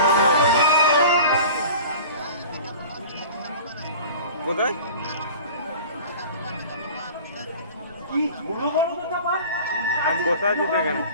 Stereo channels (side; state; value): both; inverted; correlation -0.40